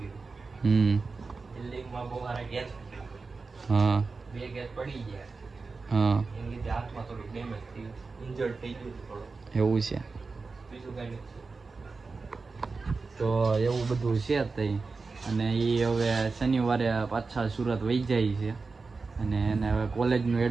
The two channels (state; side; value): quieter; left; 4.2 dB